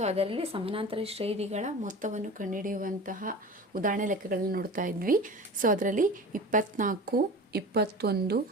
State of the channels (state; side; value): normal; both; correlation 0.34